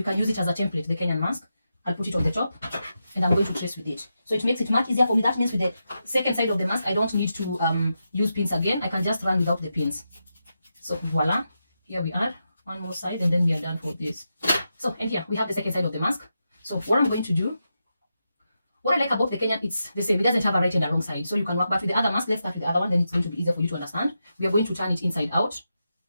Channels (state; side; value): inverted; both; correlation -0.87